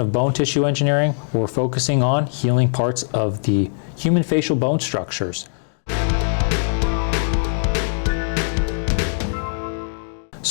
of bone tissue engineering where we're focusing on healing parts of the human facial bone structures.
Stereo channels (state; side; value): silent; right; digital silence